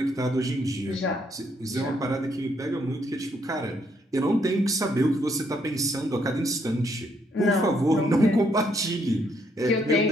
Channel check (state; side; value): normal; both; correlation 0.72